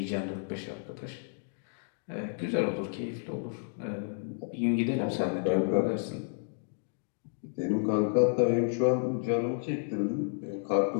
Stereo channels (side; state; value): right; silent; digital silence